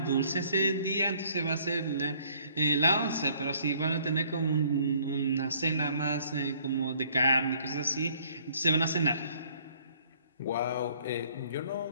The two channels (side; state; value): both; inverted; correlation -0.61